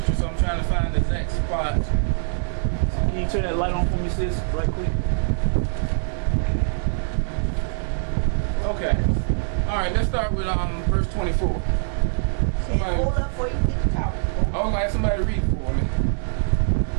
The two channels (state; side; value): silent; left; digital silence